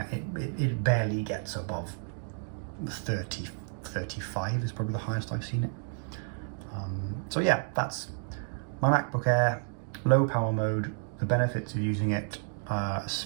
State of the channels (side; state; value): left; silent; 57 dB below the other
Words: it barely gets above 30, 35 is probably the highest I've seen it. So yeah, that's my MacBook Air, low power mode, the benefits of using it.